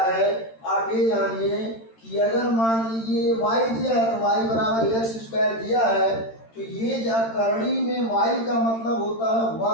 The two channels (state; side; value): late; right; 13 ms